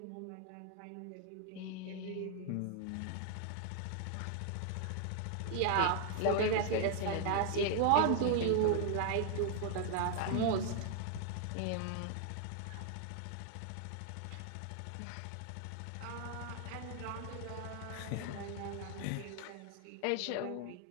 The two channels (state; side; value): different; both; correlation 0.00